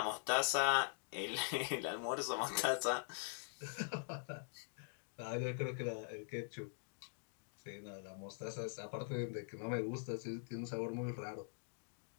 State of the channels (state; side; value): silent; right; digital silence